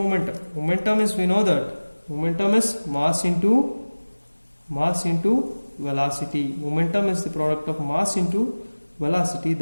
Momentum is, we know that momentum is mass into velocity. Momentum is the product of mass into velocity,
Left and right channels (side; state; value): both; inverted; correlation -1.00